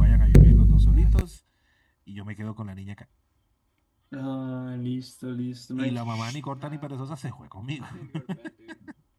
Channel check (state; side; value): identical; both; correlation 1.00